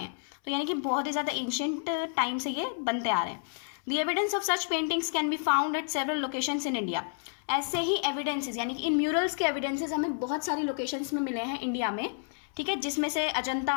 हैं। तो यानी कि बहुत ही ज़्यादा एंशिएंट टाइम से ये बनते आ रहे हैं। The evidence of such paintings can be found at several locations in India. ऐसे ही एविडेंसेस, यानी कि इन म्यूरल्स के एविडेंसेस हमें बहुत सारी लोकेशंस में मिले हैं इंडिया में, ठीक है, जिसमें से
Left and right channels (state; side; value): silent; right; 58 dB below the other